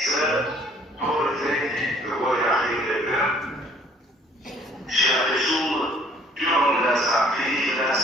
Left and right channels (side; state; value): both; normal; correlation 0.58